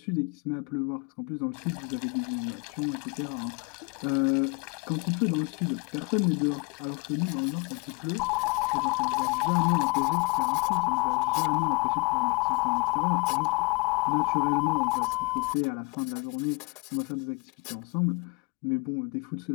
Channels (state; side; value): quieter; right; 28.4 dB